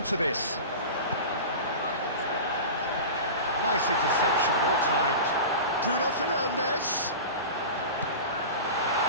this? Nice interception, well timed. Bruno Fernandes.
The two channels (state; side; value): inverted; both; correlation -0.30